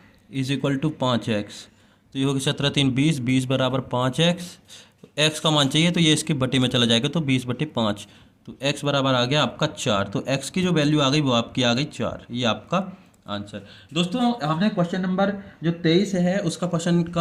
is equal to 5x। तो ये हो गया 17 3 20, 20 बराबर 5x। x का मान चाहिए तो ये इसके बटे में चला जाएगा तो 20/5, तो x बराबर आ गया आपका 4। तो x की जो वैल्यू आ गई वो आपकी आ गई 4, ये आपका आंसर। दोस्तों हमने क्वेश्चन नंबर जो 23 है उसका क्वेश्चन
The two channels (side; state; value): both; identical; correlation 1.00